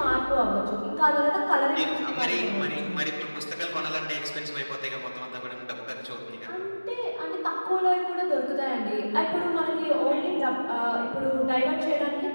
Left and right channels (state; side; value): inverted; both; correlation -1.00